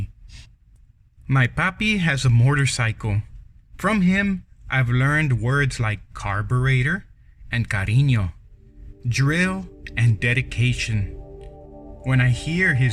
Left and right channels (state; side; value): identical; both; correlation 1.00